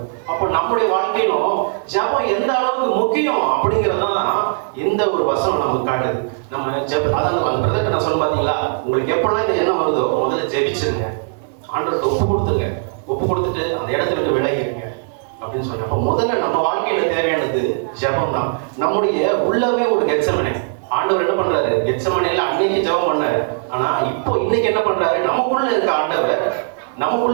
அப்போ நம்முடைய வாழ்க்கையிலும் ஜெபம் எந்த அளவுக்கு முக்கியம் அப்படிங்கறதான் இந்த ஒரு வசனம் நமக்கு காட்டுது. நம்ம அதான் பிரதர் நான் சொல்ல பாத்தீங்களா, உங்களுக்கு எப்பெல்லாம் இந்த எண்ணம் வருதோ முதல்ல ஜெபிச்சிருங்க, ஆண்டவருக்கு ஒப்பு கொடுத்துட்டு அந்த இடத்துல விட்டு விலகிடுங்க அப்படின்னு சொன்னேன். அப்போ முதல்ல நம்ம வாழ்க்கையில தேவையானது ஜெபம் தான். நம்முடைய உள்ளவே ஒரு கெத்செமனே. ஆண்டவர் என்ன பண்றாரு, கெத்செமனேல அன்னைக்கு ஜெபம் பண்ணாரு. ஆனா இப்போ இன்னைக்கு என்ன பண்றாரு, நமக்குள்ள இருக்க ஆண்டவர்,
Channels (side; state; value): left; silent; 58 dB below the other